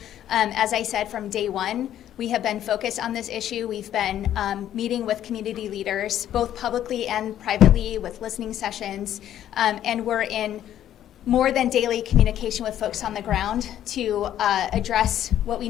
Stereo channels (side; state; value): right; quieter; 11.4 dB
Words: As I said, from day one, we have been focused on this issue. We've been meeting with community leaders, both publicly and privately, with listening sessions, and we're in more than daily communication with folks on the ground to address what we